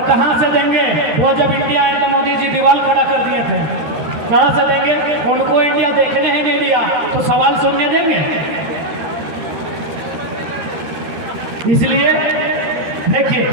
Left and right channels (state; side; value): late; left; 13 ms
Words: कहां से देंगे? वो जब इंडिया आए तो मोदी जी दीवार खड़ा कर दिए थे, कहां से देंगे? उनको इंडिया देखने ही नहीं दिया तो सवाल सुनने देंगे? इसलिए देखिए,